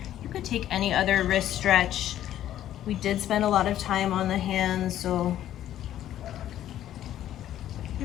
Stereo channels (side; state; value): right; quieter; 12.0 dB